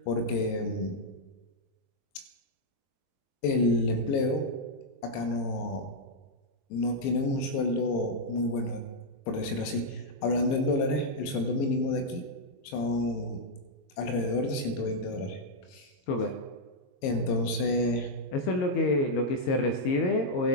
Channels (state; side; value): late; right; 22 ms